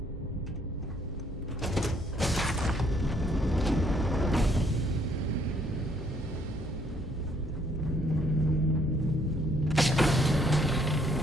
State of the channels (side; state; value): both; normal; correlation 0.66